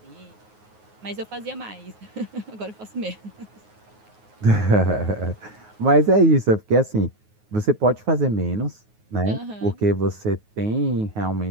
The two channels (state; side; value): late; left; 9.4 ms